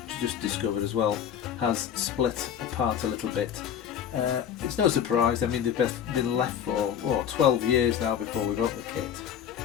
just discovered as well, has split apart a little bit. It's no surprise. I mean, they've been left for 12 years now before we wrote the kit,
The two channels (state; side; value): quieter; right; 9.0 dB